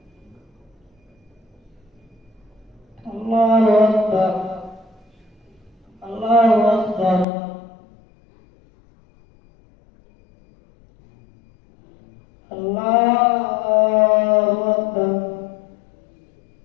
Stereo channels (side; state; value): right; drops out; at 7.2 s